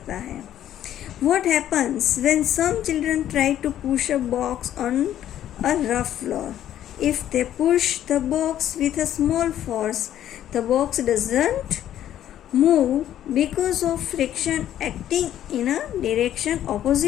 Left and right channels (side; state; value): right; quieter; 11.5 dB